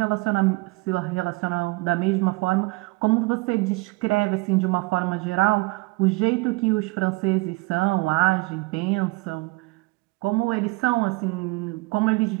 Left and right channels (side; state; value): left; quieter; 24.1 dB